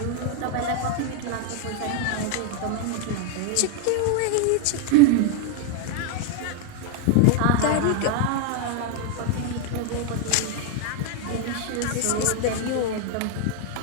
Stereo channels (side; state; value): both; different; correlation 0.00